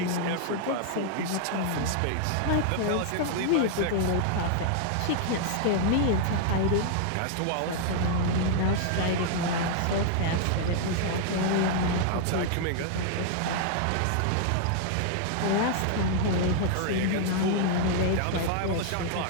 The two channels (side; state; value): both; different; correlation 0.00